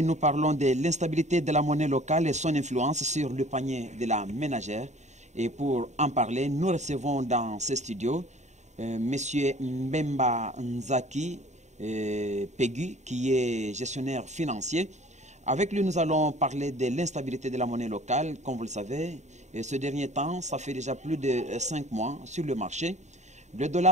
nous parlons de l'instabilité de la monnaie locale et son influence sur le panier de la ménagère. Et pour en parler, nous recevons dans ce studio M. Mbemba Nzaki Peggy, qui est gestionnaire financier. Avec lui, nous allons parler de l'instabilité de la monnaie locale. Comme vous le savez, et ce dernier temps, ça fait déjà plus de 5 mois sur le marché. Le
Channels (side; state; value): left; late; 0.34 ms